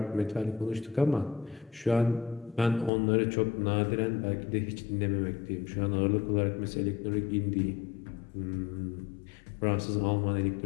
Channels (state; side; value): drops out; right; at 2.9 s